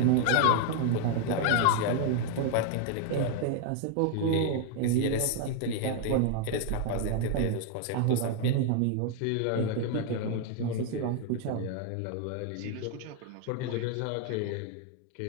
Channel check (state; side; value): different; both; correlation 0.00